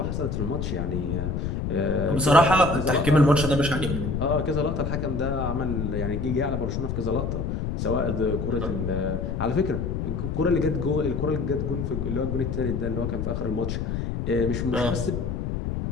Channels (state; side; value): noise; left; rumble, 2 dB below the sound